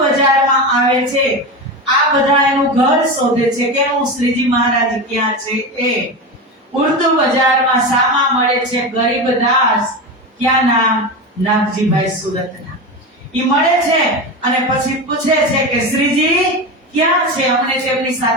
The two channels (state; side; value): normal; both; correlation 0.21